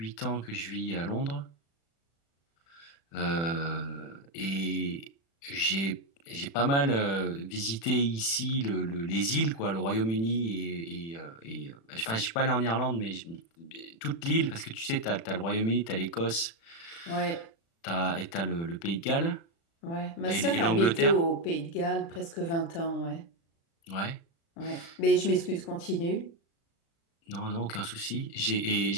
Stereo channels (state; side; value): late; right; 36 ms